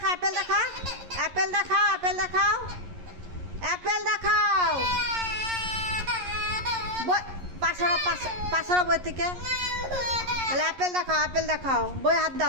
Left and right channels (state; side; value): late; left; 11 ms